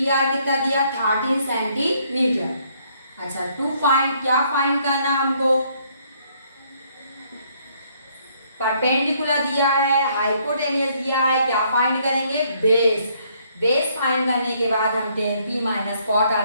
आर कितना दिया 13 सेंटीमीटर। अच्छा, टू फाइंड, क्या फाइंड करना हमको, परपेंडिकुलर दिया है, हाइपोटेनियस दिया है, क्या फाइंड करेंगे बेस, बेस फाइंड करने के बाद हम tan p minus cot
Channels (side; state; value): both; inverted; correlation -0.67